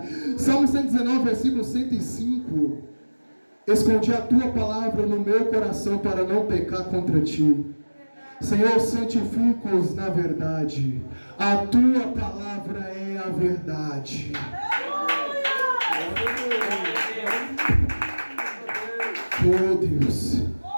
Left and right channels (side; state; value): both; inverted; correlation -1.00